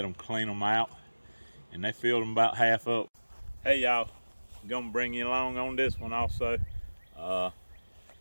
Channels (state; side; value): inverted; both; correlation -1.00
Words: them clean them out, and they filled them about half up. Hey y'all, I'm gonna bring you along on this one also.